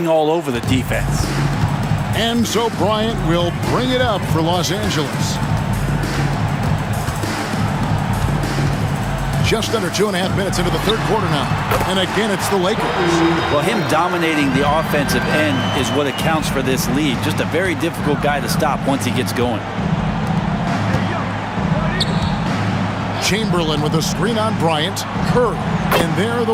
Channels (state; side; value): identical; both; correlation 1.00